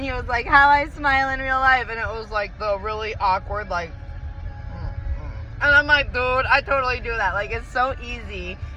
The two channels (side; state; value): both; identical; correlation 1.00